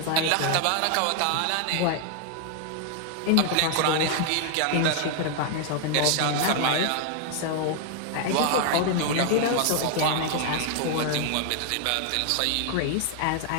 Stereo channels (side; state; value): both; different; correlation 0.00